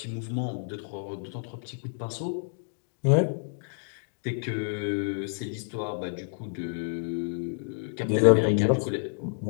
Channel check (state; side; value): silent; right; digital silence